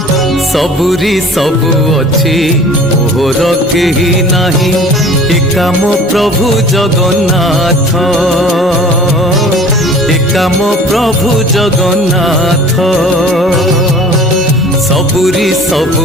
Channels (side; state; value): both; normal; correlation 0.46